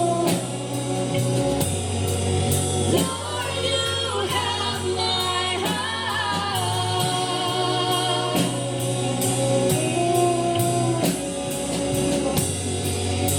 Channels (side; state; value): both; identical; correlation 1.00